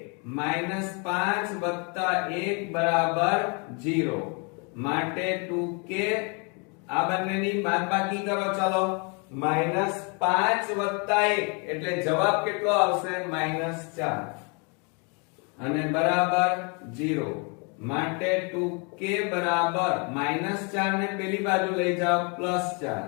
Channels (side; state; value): right; quieter; 34.2 dB